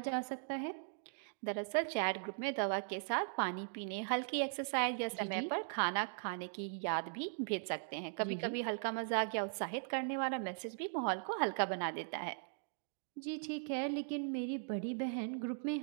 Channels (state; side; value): silent; left; digital silence